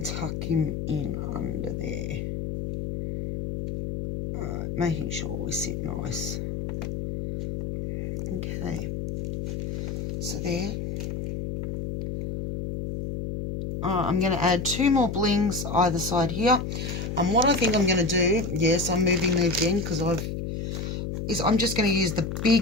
tuck him in under there. Alright, making sure we sit nice. Okay, so there. I'm going to add 2 more blings either side here. And what I think I'm going to do, yes, I'm moving them again because I'm just going to use the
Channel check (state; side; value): noise; left; hum, 4 dB below the sound